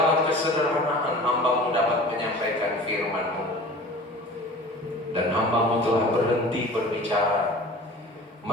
kesederhanaan hamba-Mu dapat menyampaikan firman-Mu, dan hamba-Mu telah berhenti berbicara.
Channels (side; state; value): both; normal; correlation 0.41